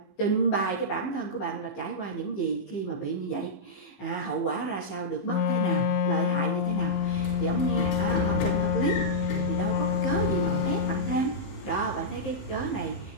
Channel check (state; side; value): late; right; 15 ms